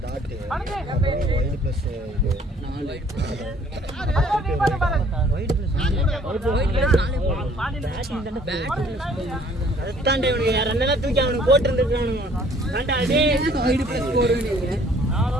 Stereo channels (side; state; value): both; normal; correlation 0.57